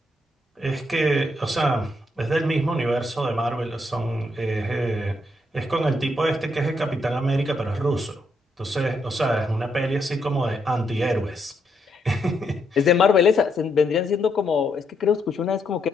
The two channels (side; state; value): both; normal; correlation 0.77